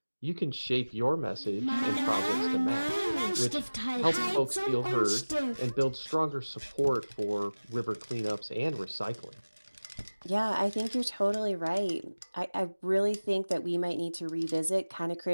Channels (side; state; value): both; inverted; correlation -1.00